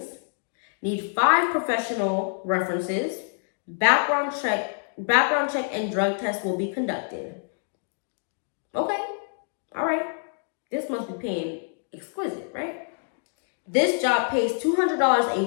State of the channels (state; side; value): silent; right; 61 dB below the other